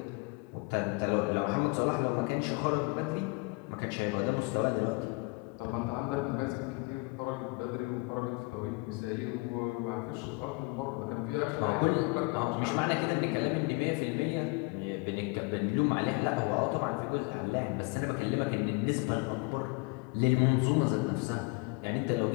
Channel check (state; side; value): quieter; right; 28.3 dB